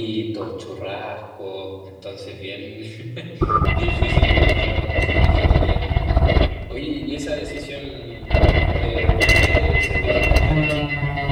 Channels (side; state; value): both; identical; correlation 1.00